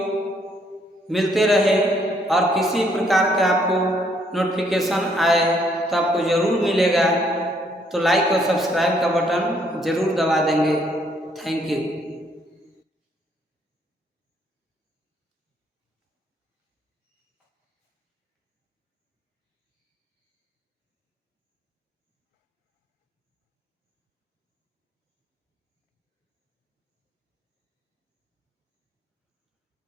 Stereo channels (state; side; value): normal; both; correlation 0.68